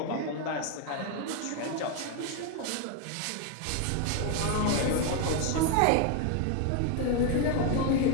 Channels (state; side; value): different; both; correlation 0.01